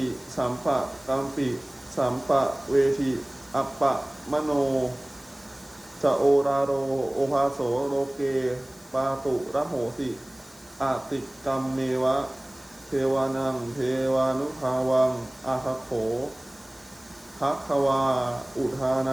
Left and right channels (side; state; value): left; noise; hiss, 26 dB below the sound